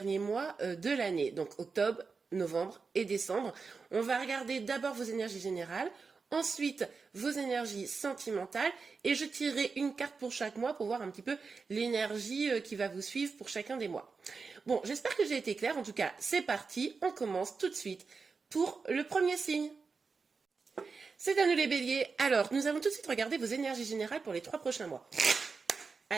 mois de l'année, donc octobre, novembre et décembre, on va regarder d'abord vos énergies générales, ensuite vos énergies sentimentales et je tirerai une carte pour chaque mois pour voir un petit peu l'énergie qui va vous suivre pour chacun des mois. Bon, j'espère que j'ai été claire. En tout cas, c'est parti. On commence tout de suite pour le premier signe. C'est à nous les béliers. Alors, nous allons tout de suite regarder vos énergies générales pour les 3 prochains mois.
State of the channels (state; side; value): quieter; left; 4.8 dB